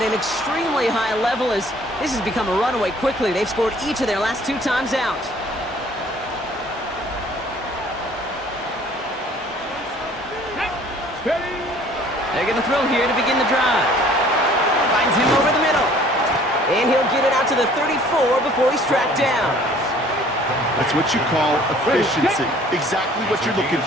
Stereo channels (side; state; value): both; normal; correlation 0.54